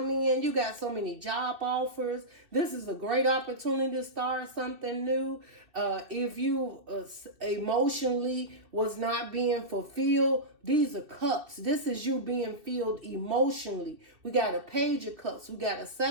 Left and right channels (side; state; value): left; late; 2.6 ms